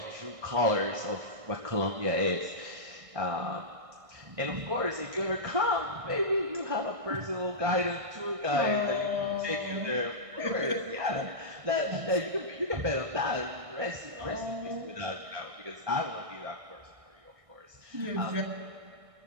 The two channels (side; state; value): left; late; 1.6 ms